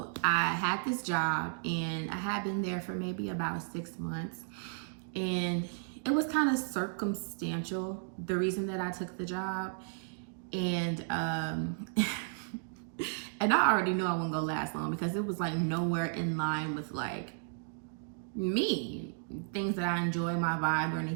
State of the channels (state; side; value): silent; left; digital silence